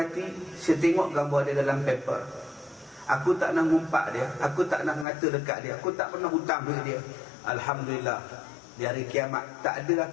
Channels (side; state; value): right; drops out; at 5.1 s